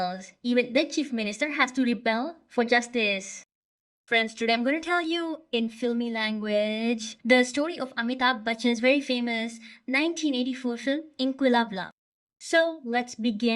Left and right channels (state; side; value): identical; both; correlation 1.00